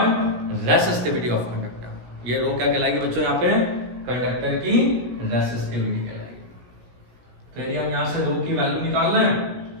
resistivity of conductor. ये रो क्या कहलाएगी बच्चों, यहाँ पे कंडक्टर की रेसिस्टिविटी कहलाएगी। तो यदि हम यहाँ से रो की वैल्यू निकाल रहे हैं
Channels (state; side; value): late; left; 17 ms